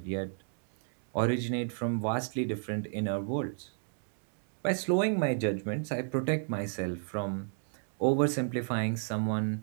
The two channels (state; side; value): silent; left; digital silence